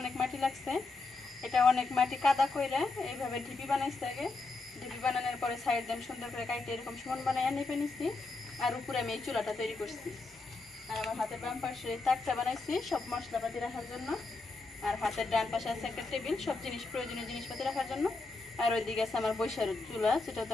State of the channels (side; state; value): right; quieter; 3.6 dB